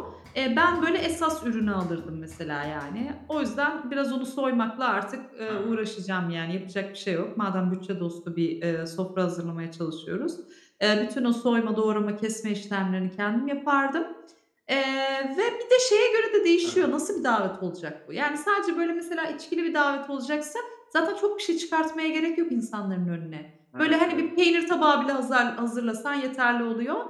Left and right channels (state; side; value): identical; both; correlation 1.00